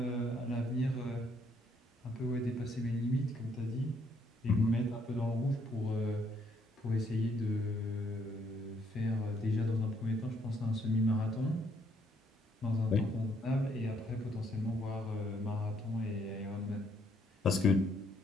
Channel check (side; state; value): both; normal; correlation 0.69